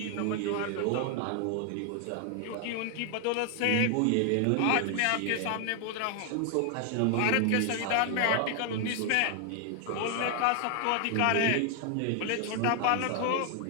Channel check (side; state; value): both; different; correlation 0.00